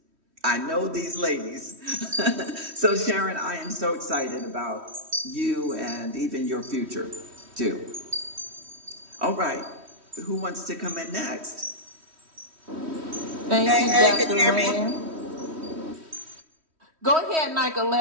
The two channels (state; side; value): late; left; 3.1 ms